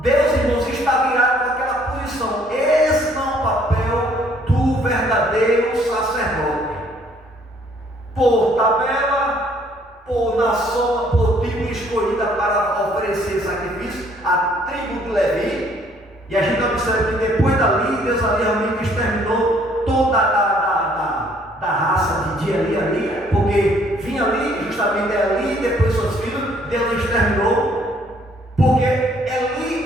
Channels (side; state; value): both; normal; correlation 0.62